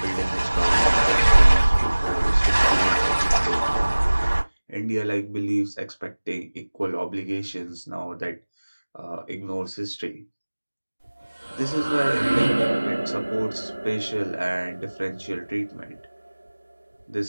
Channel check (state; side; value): inverted; both; correlation -1.00